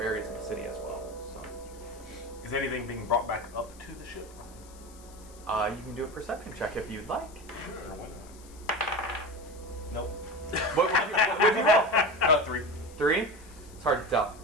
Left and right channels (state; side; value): noise; left; hiss, 22 dB below the sound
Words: of the city as well. So, is anything being brought back up to the ship? You can do a perception check if you'd like. Sure. Nope. What would you roll? 3. 3? It's hard to tell.